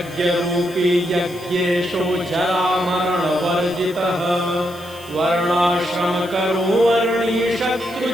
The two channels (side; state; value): left; noise; hiss, 20 dB below the sound